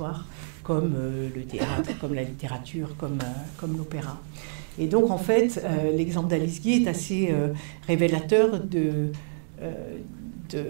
comme le théâtre, comme la littérature, comme l'opéra. Et donc, en fait, l'exemple d'Alice Guy est assez révélateur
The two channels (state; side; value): silent; left; digital silence